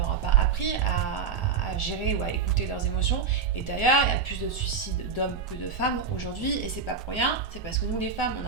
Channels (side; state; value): left; quieter; 5.7 dB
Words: a pas appris à gérer ou à écouter leurs émotions, et d'ailleurs il y a plus de suicides d'hommes que de femmes aujourd'hui, et c'est pas pour rien, c'est parce que nous les femmes on